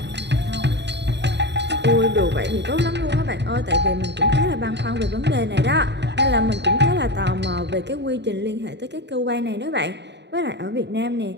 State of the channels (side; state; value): left; late; 0.51 ms